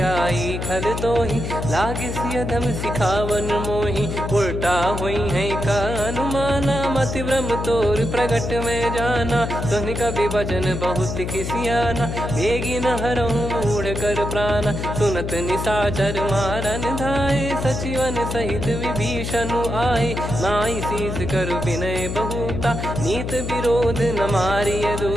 आई खल तो ही लागिस यधम सिखावन मोही उल्टा हुई है का अनुमाना मति ब्रह्म तोर प्रगट में जाना सुन कभी वचन बहुत किसियाना बेगी न हरहु मूढ़ कर प्राणा सुनत निशाचर मारन धाये सचिवन सहित विभीषणु आए नाई शीस कर विनय बहुता नीत विरोध न मारिय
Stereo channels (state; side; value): noise; left; hum, 4 dB below the sound